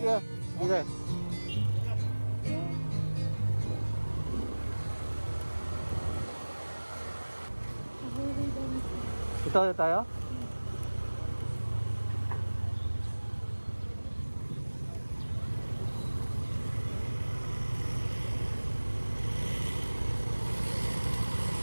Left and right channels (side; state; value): both; inverted; correlation -1.00